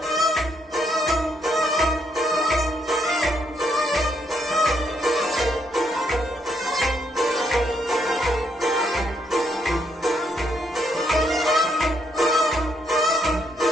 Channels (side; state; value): both; normal; correlation 0.74